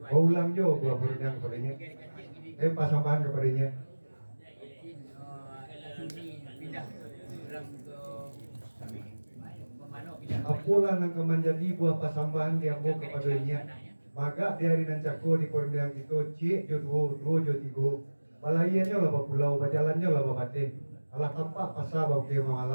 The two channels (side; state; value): both; inverted; correlation -1.00